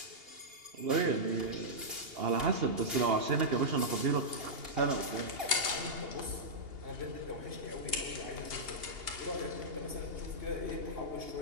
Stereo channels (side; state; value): left; late; 2.8 ms